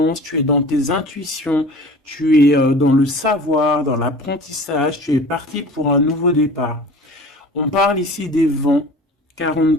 tu es dans tes intuitions, tu es dans le savoir, dans l'apprentissage, tu es parti pour un nouveau départ. On parle ici des vents,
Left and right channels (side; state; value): both; normal; correlation 0.41